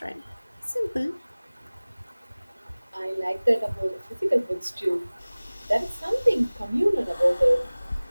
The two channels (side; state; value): both; inverted; correlation -1.00